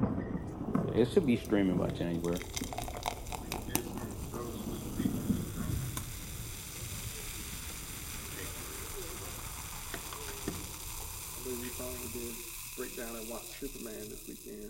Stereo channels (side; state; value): both; identical; correlation 1.00